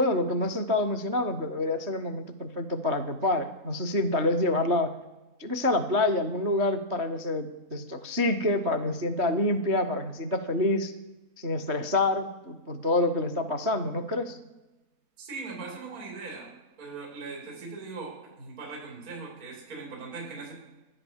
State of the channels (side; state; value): left; late; 3.2 ms